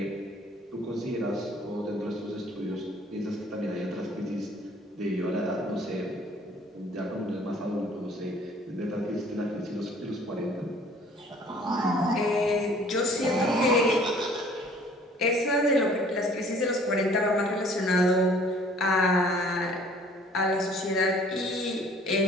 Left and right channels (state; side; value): normal; both; correlation 0.55